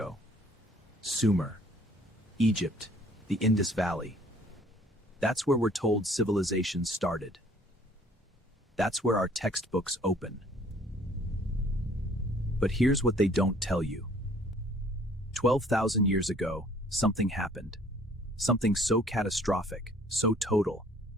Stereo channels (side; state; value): both; normal; correlation 0.57